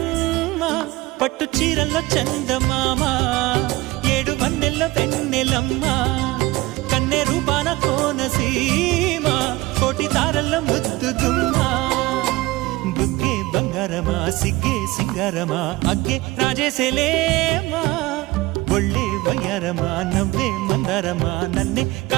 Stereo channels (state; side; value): quieter; left; 19.9 dB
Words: పట్టు చీరల్లో చందమామ 7 వన్నెల్లో వెన్నెలమ్మా కన్నె రూపాన కోనసీమ కోటి తారల్లో ముద్దుగుమ్మా బుగ్గే బంగారమా సిగ్గే సింగారమా అగ్గే రాజేసేలేమా ఒళ్ళే వయ్యారమా నవ్వే మందారమా నన్నే